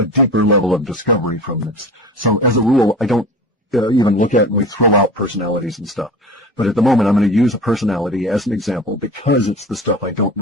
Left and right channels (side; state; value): both; normal; correlation 0.36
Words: deeper level of discovery from this. So as a rule, I don't even look at and we throw out personalities and stuff. But at the moment, I'm going to use a personality as an example because it's the stuff I don't